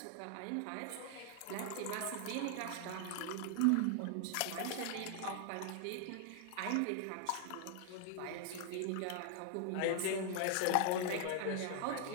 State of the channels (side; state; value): both; different; correlation 0.00